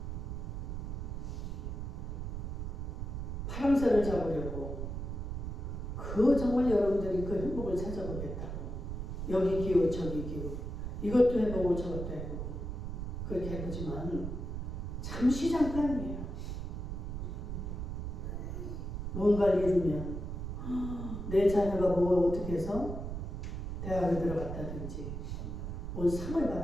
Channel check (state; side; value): noise; right; rumble, 5 dB below the sound